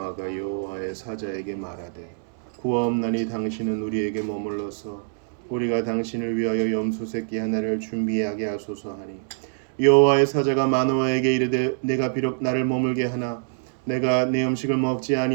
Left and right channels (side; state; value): left; silent; 62 dB below the other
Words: 여호와의 사자에게 말하되 구하옵나니 당신은 우리에게 머물러서 우리가 당신을 위하여 염소 새끼 하나를 준비하게 하소서 하니 여호와의 사자가 마노아에게 이르되 내가 비록 나를 머물게 하나 내가 내 음식을 먹지